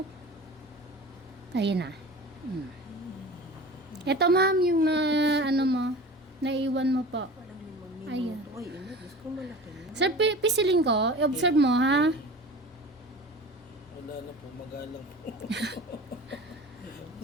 Ayan na. Ito, ma'am, yung ano mo, naiwan mo po. Ayan. Sir, pisilin ko. I-observe mo, ha? Wala na po, magalang po.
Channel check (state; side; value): normal; both; correlation 0.37